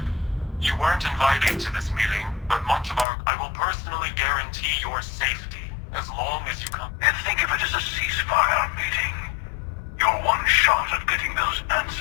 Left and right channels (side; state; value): right; drops out; at 3.1 s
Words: You weren't invited to this meeting, but I will personally guarantee your safety as long as you come. And think of it as a ceasefire meeting. Your one shot at getting those